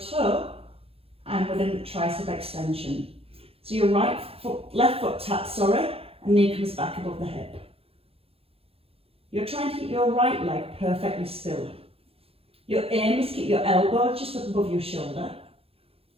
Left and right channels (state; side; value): late; left; 0.28 ms